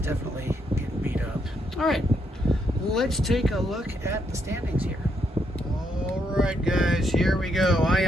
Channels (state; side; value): normal; both; correlation 0.77